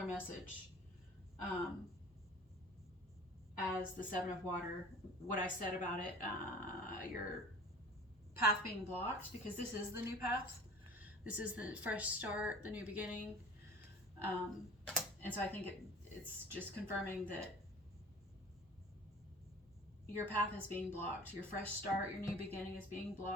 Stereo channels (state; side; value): normal; both; correlation 0.44